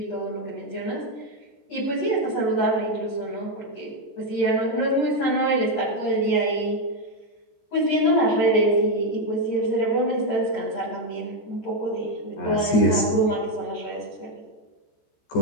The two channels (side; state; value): right; late; 14 ms